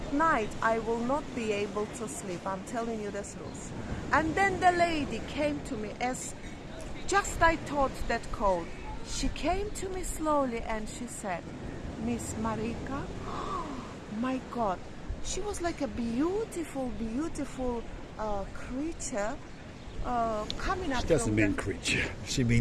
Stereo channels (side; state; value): both; identical; correlation 1.00